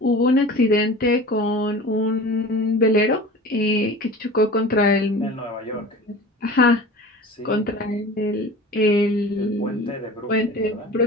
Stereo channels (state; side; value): normal; both; correlation 0.38